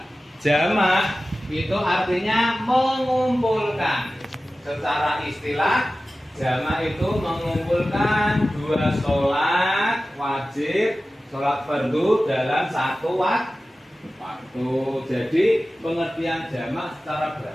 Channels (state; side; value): normal; both; correlation 0.95